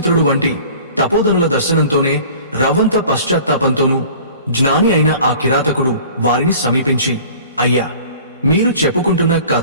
వంటి తపోధనుల దర్శనంతోనే రవ్వంత పశ్చాత్తాపంతోనూ జ్ఞాని అయిన ఆ కిరాతకుడు వారిని సమీపించి, అయ్యా, మీరు చెప్పుకుంటున్న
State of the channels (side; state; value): both; inverted; correlation -0.45